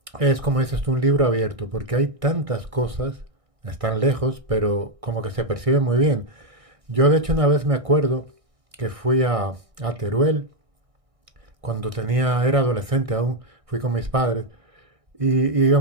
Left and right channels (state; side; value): late; left; 1.6 ms